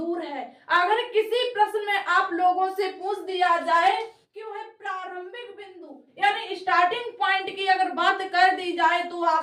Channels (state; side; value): identical; both; correlation 1.00